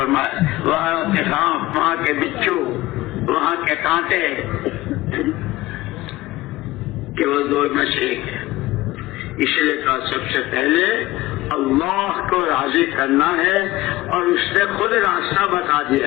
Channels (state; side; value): quieter; right; 18.2 dB